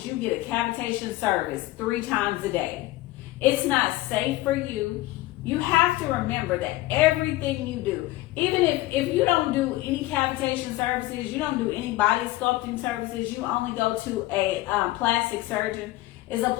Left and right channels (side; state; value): right; quieter; 17.8 dB